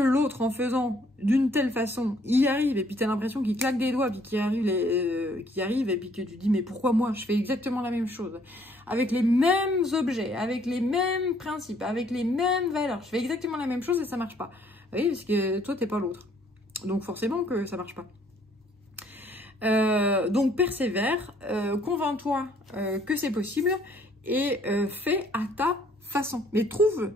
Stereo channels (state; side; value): normal; both; correlation 0.63